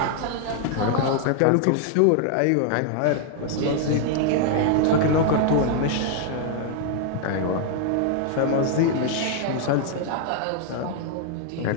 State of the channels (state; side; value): different; both; correlation 0.00